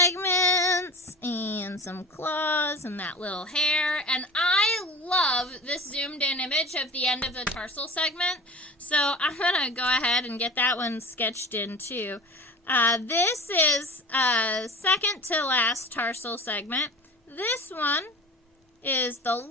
and some claws and that little hair. And I love this zoomed in image of the end of the tarsal segment. So I'm going to go ahead and get that one sketched in too. This is second to last tarsal segment. This one is the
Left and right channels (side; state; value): both; normal; correlation 0.36